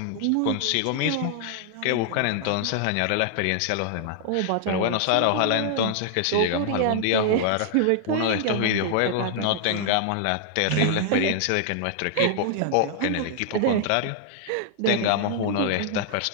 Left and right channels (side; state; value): both; different; correlation -0.01